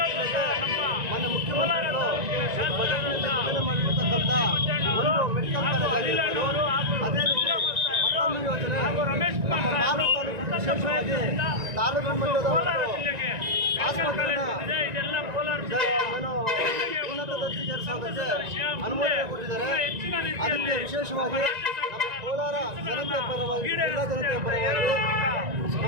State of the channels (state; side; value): late; left; 1.9 ms